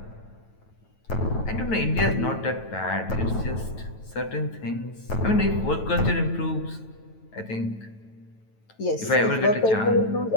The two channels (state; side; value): late; right; 9.2 ms